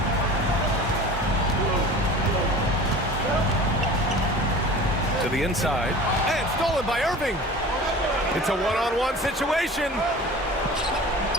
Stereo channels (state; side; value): normal; both; correlation 0.40